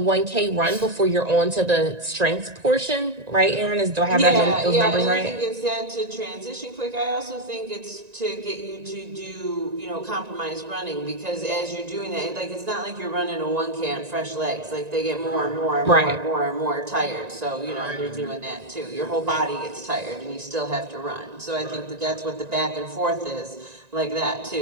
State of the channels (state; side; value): late; left; 1.9 ms